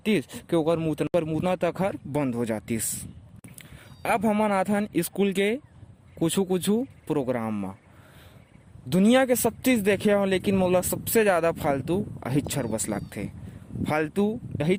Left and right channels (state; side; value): identical; both; correlation 1.00